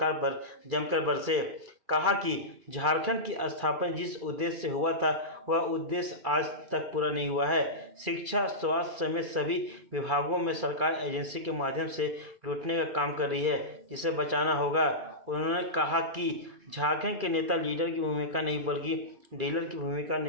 पर जमकर बरसे। कहा कि झारखंड की स्थापना जिस उद्देश्य से हुआ था वह उद्देश्य आज तक पूरा नहीं हुआ है। शिक्षा, स्वास्थ्य समेत सभी विभागों में सरकार एजेंसी के माध्यम से लूटने का काम कर रही है, जिसे बचाना होगा। उन्होंने कहा कि झारखंड के नेता लीडर की भूमिका नहीं बल्कि डीलर की भूमिका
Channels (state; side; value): late; left; 2.3 ms